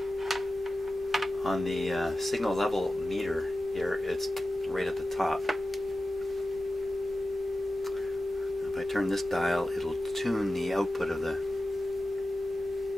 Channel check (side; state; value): both; normal; correlation 0.94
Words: on the signal level meter here, it's right at the top. If I turn this dial, it'll tune the output of the...